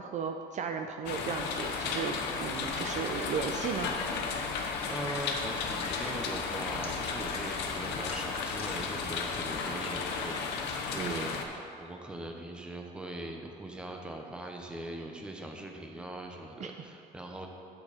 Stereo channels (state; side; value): normal; both; correlation 0.22